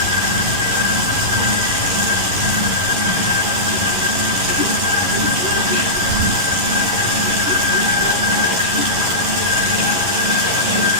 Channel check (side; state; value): left; late; 11 ms